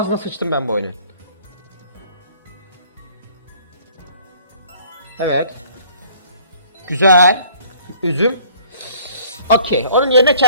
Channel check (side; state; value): both; inverted; correlation -0.56